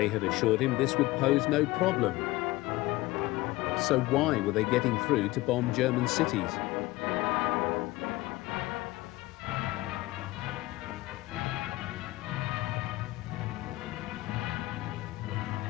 had assured him this would pose no problem. So why were they getting through to bomb German cities?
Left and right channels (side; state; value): right; quieter; 19.2 dB